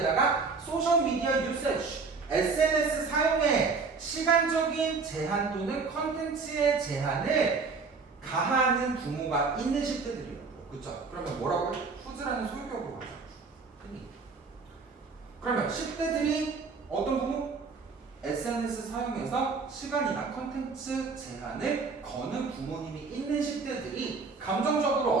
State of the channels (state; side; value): quieter; left; 4.6 dB